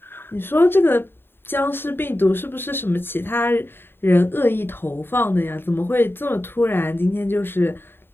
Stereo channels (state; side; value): late; right; 0.11 ms